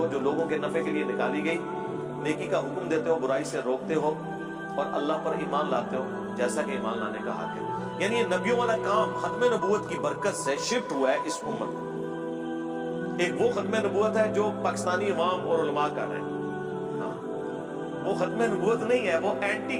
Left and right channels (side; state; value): both; identical; correlation 1.00